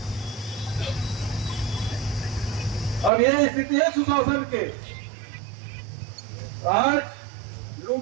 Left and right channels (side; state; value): left; drops out; at 3.1 s